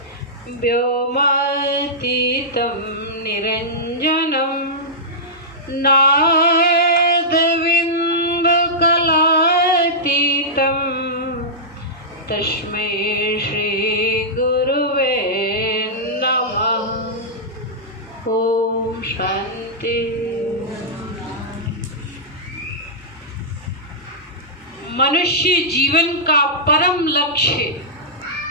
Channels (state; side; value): normal; both; correlation -0.13